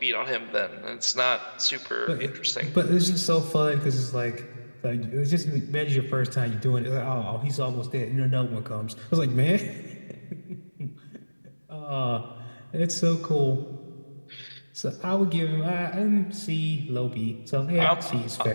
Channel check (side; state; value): both; inverted; correlation -1.00